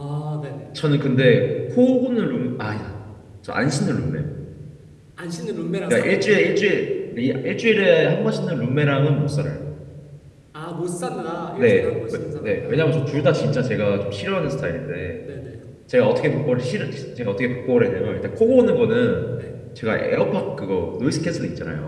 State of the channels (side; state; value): both; identical; correlation 1.00